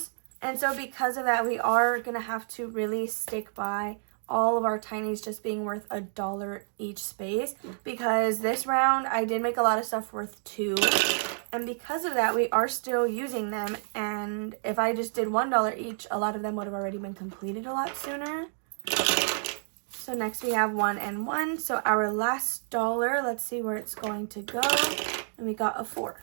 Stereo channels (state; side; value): silent; left; digital silence